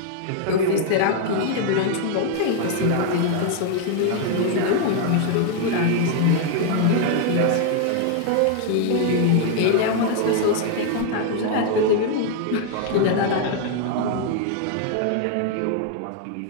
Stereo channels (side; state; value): both; different; correlation 0.00